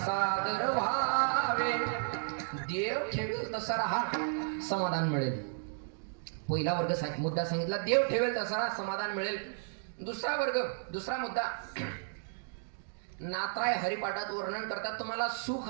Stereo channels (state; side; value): silent; left; digital silence